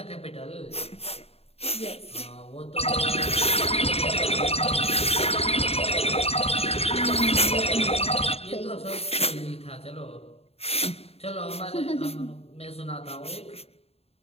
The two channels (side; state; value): right; late; 0.29 ms